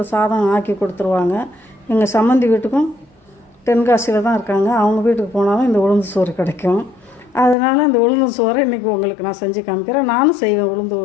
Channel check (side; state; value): right; drops out; at 7.6 s